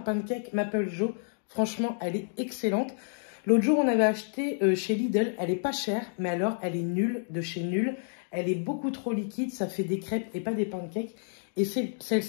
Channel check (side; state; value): right; silent; digital silence